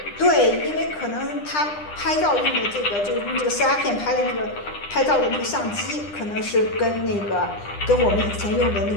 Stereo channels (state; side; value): late; right; 9.9 ms